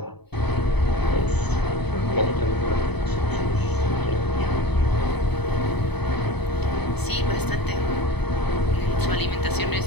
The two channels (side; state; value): right; late; 0.98 ms